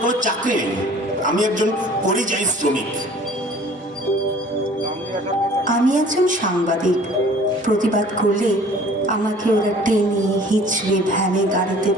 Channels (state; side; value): normal; both; correlation 0.50